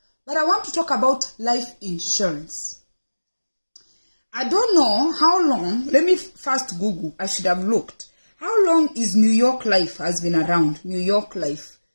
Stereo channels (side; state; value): both; inverted; correlation -1.00